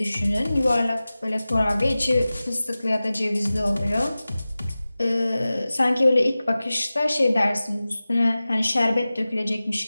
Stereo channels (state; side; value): inverted; both; correlation -0.97